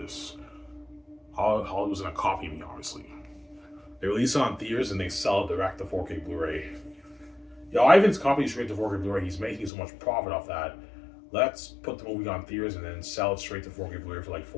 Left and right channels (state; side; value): drops out; right; at 9.7 s